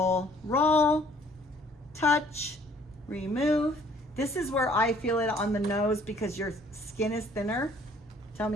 roll. Touch, remove. This is where I feel it on the nose because your skin is thinner. Tell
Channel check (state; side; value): normal; both; correlation 0.59